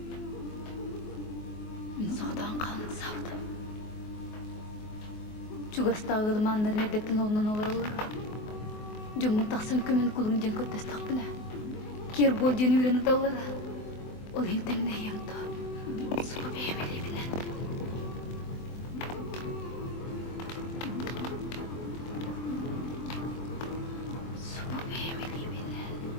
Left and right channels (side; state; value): right; late; 24 ms